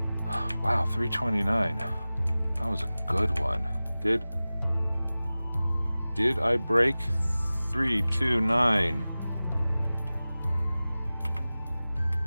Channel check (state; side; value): inverted; both; correlation -0.97